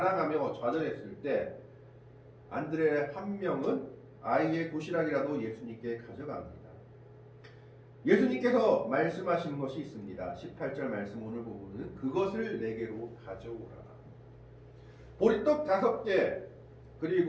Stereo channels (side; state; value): both; identical; correlation 1.00